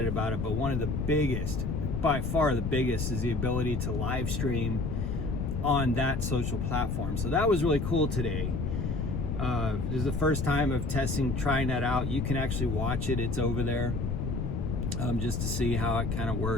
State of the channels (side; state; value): left; noise; rumble, 1 dB below the sound